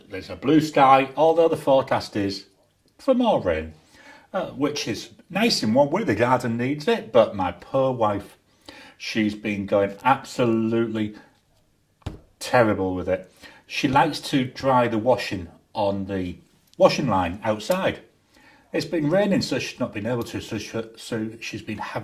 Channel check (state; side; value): identical; both; correlation 1.00